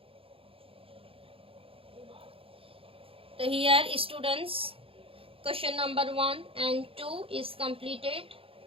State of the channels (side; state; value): left; late; 0.27 ms